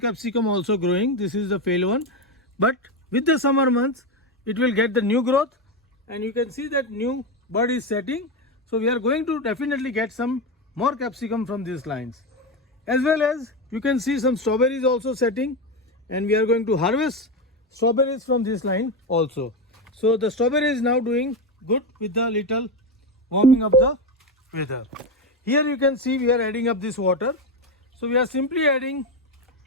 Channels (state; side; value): normal; both; correlation 0.13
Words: also growing. This is the fail one. But with the summer months, it will get the new growth and you can see that new bud is setting. So we are going to definitely get some more capsicum from these lines. As well as you can see some strawberries also setting and we are going to harvest strawberries from this line also. So the strawberry is now doing good with the little warming of the weather. Here you can see we are adding up this water. So we are simply adding